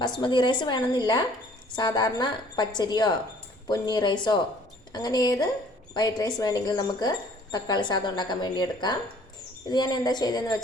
റൈസ് വേണമെന്നില്ല, സാധാരണ പച്ചരിയോ പൊന്നി റൈസോ അങ്ങനെ ഏത് വൈറ്റ് റൈസ് വേണമെങ്കിലും നമുക്ക് തക്കാളി സാദം ഉണ്ടാക്കാൻ വേണ്ടി എടുക്കാം. ഇത് ഞാൻ എന്താ ചെയ്തതെന്ന്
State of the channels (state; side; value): normal; both; correlation 0.56